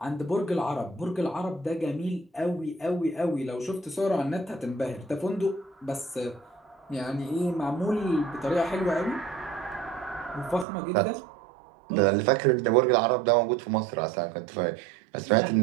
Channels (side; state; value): left; drops out; at 10.7 s